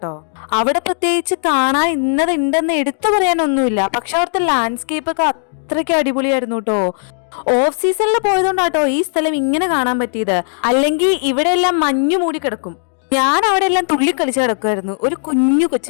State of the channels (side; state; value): right; silent; digital silence